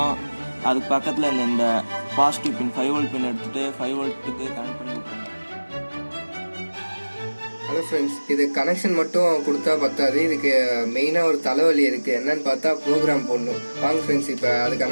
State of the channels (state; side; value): inverted; both; correlation -1.00